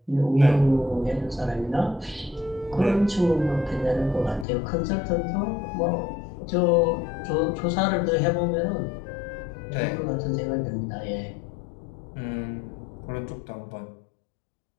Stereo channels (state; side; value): drops out; right; at 4.5 s